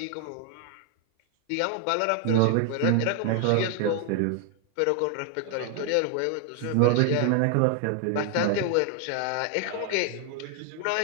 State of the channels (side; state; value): both; different; correlation 0.00